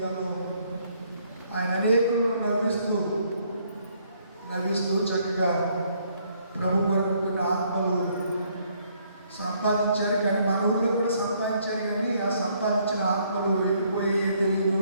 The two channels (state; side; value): inverted; both; correlation -0.68